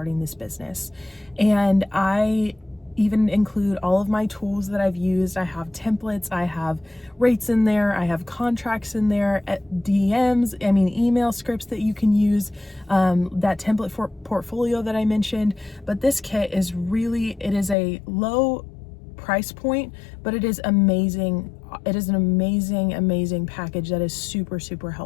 this business. And I even include all of my tools that I've used. I have templates, I have rates in there, I have contracts in there, email scripts that you can use, that template for portfolio that I mentioned. But this kit is it is a low price point, but it is amazing. It is an amazing package that is super, super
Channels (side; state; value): right; drops out; at 17.8 s